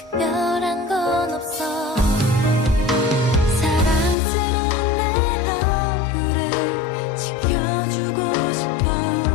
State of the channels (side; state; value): right; drops out; at 4.2 s